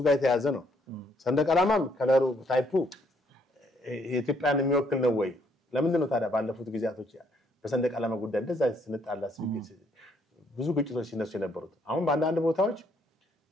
ጋር የተያዘ ነው ሰንደቅ ዓላማም ከለሩ ታይፑ የኢትዮጵያን የሚወክል ነው ወይ ለምን ነው ታዲያ ባለፉት ጊዜያቶች በሰንደቅ ዓላማ ጉዳይ እንደዛ ስንጣላ ብዙ ግጭቶች ሲነሱ የነበሩት አሁን በአንዳንድ ቦታዎች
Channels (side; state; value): both; normal; correlation 0.69